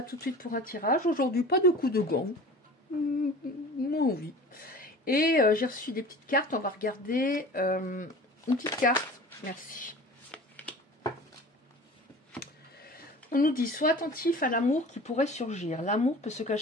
tout de suite pour un tirage. Aujourd'hui, pas de coup de gant. Moins envie. Et j'ai reçu des petites cartes. On va regarder une petite carte. Merci. On nous dit, sois attentif à l'amour qui pourrait surgir. L'amour peut se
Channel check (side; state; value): both; normal; correlation 0.40